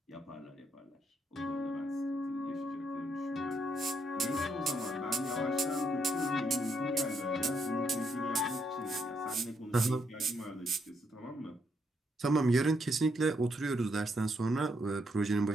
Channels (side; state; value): both; normal; correlation 0.76